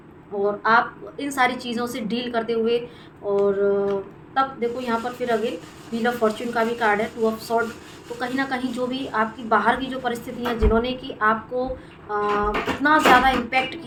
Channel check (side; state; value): both; identical; correlation 1.00